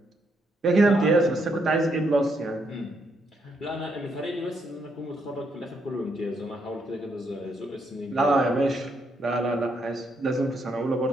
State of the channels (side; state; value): both; normal; correlation 0.76